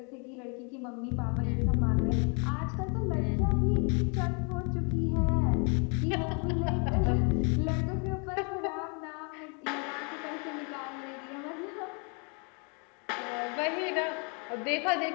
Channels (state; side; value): quieter; right; 35.9 dB